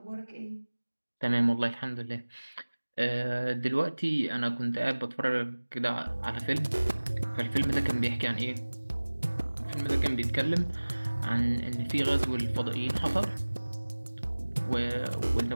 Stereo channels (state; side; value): inverted; both; correlation -1.00